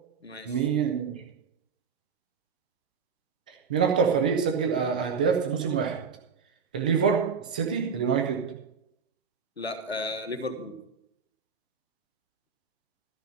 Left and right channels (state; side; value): quieter; left; 5.8 dB